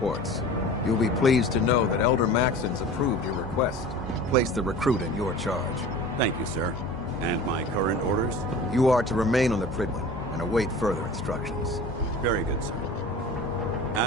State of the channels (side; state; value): both; normal; correlation 0.39